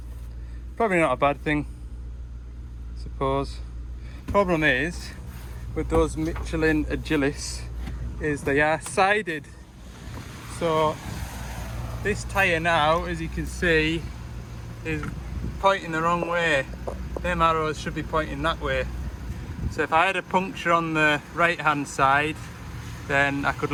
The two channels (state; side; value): identical; both; correlation 1.00